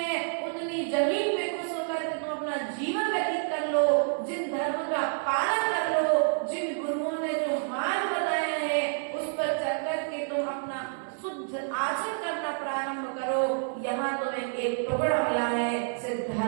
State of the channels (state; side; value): silent; left; digital silence